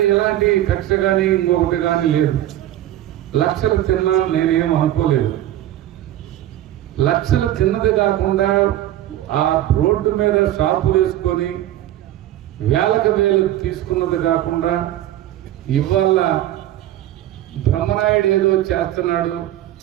ఎలాంటి కక్ష కానీ ఇంకొకటి కానీ లేదు. లక్షలు తిన్నా నేనేం అనుకోలేదు. లక్షలు తిన్నది కాకుండా ఆ రోడ్డు మీద షాపులు వేసుకొని వేలకు వేలు తీసుకున్నది కాకుండా ఇవాళ బ్రహ్మనాయుడు ఏదో చేస్తున్నాడు.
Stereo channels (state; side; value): quieter; left; 13.3 dB